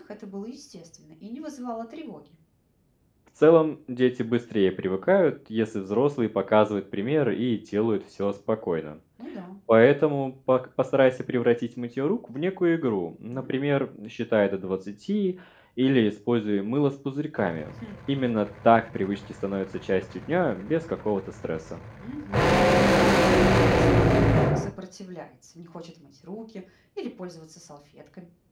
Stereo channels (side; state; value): both; identical; correlation 1.00